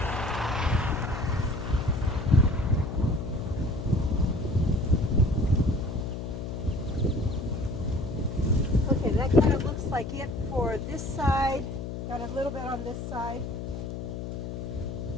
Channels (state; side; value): noise; left; hum, 6 dB below the sound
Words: Okay, that kind of looks like it for this side. Got a little bit on this side.